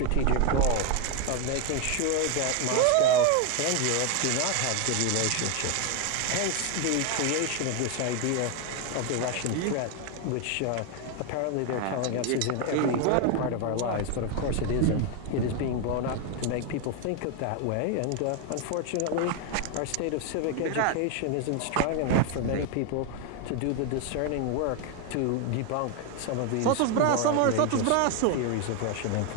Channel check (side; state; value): both; different; correlation 0.01